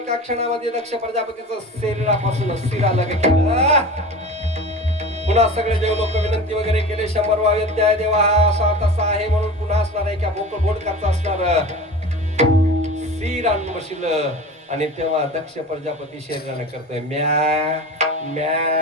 क्षणामध्ये दक्ष प्रजापतीचं शरीरापासून शिर अलग केलं. पुन्हा सगळे देव लोक विनंती वगैरे केले. 100 वाद्य देवा हा असा तसा आहे म्हणून पुन्हा असणार आहे. बोकड बोडकाचा असणार शिर आणून बसलं. आणि तेव्हा दक्ष प्रजापती शरीराने करतोय म्या म्या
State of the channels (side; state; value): both; normal; correlation 0.34